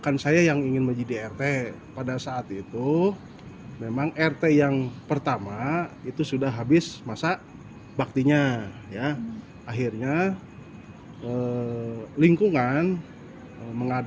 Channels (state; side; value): identical; both; correlation 1.00